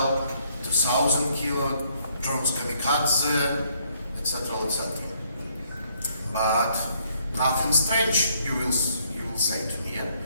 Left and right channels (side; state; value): both; inverted; correlation -0.68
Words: 2,000 kilo, drones kamikaze, etc., etc. But nothing strange, you will say to me, yeah?